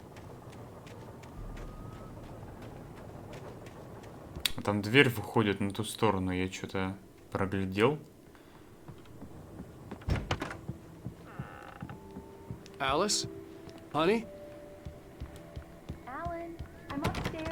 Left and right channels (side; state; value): both; identical; correlation 1.00